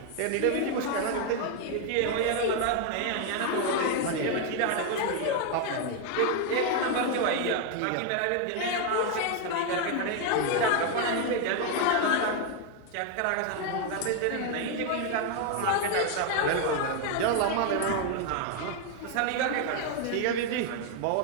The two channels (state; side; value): different; both; correlation 0.01